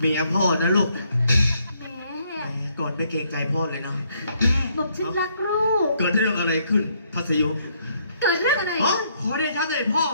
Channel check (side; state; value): both; inverted; correlation -0.70